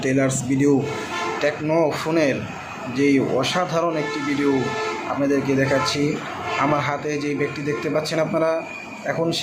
টেইলার্স ভিডিও টেকনো ফোনের যেই অসাধারণ একটি ভিডিও আপনাদেরকে দেখাচ্ছি। আমার হাতে যেই ব্যাগটি দেখতে পাচ্ছেন আপনারা, এখন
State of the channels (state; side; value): identical; both; correlation 1.00